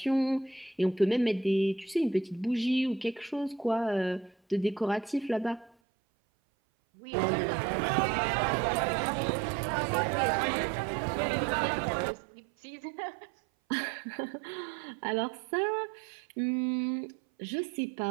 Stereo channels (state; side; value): drops out; left; at 5.8 s